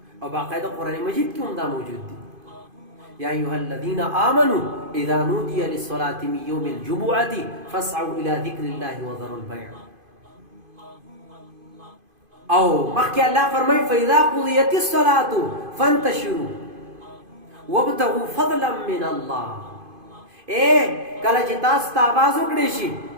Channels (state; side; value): late; left; 2.5 ms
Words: او باقاعده قرآن مجید کې هم دا موجود دي یا ایها الذین آمنوا اذا نودي للصلاة من يوم الجمعة فاسعوا الى ذکر الله وذروا البيع او مخکې الله فرمایي فاذا قضيت الصلاة فانتشروا وابتغوا فضلا من الله کله چې تاسو ته आवाज وکړي شي